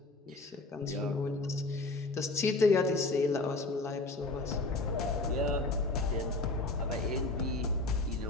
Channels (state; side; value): quieter; right; 3.2 dB